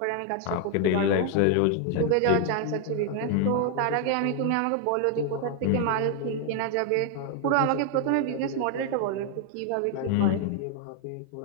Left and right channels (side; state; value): both; different; correlation 0.00